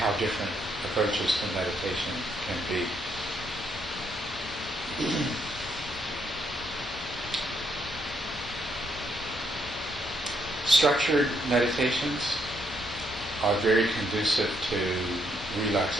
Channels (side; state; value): both; normal; correlation 0.74